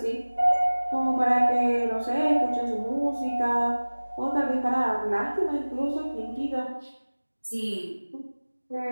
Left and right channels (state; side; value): inverted; both; correlation -1.00